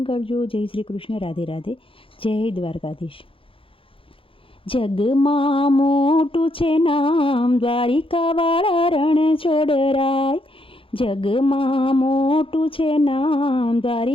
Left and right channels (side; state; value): right; late; 0.26 ms